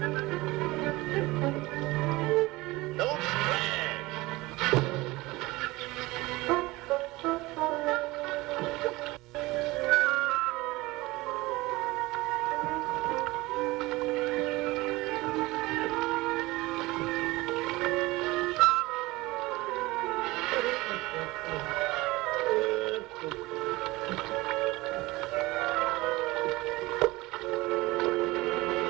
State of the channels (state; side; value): quieter; left; 20.8 dB